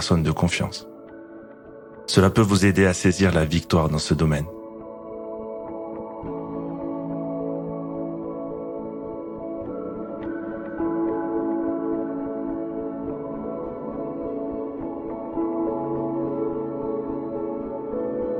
de confiance. Cela peut vous aider à saisir la victoire dans ce domaine.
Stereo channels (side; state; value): both; identical; correlation 1.00